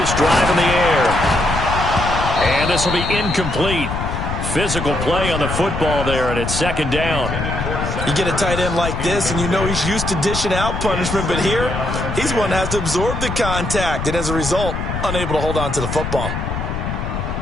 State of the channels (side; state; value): left; noise; rumble, 4 dB below the sound